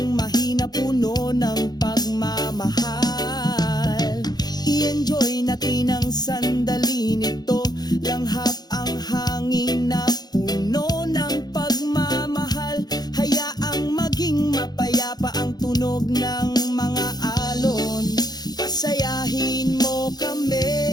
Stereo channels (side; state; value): right; late; 0.19 ms